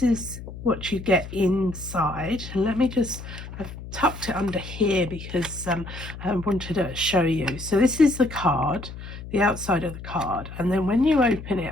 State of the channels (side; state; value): left; noise; hum, 12 dB below the sound